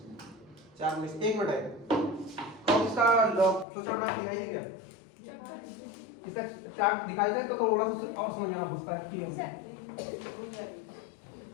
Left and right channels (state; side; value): drops out; right; at 3.7 s